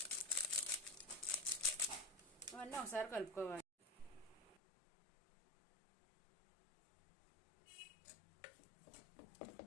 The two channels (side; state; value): right; drops out; at 4.6 s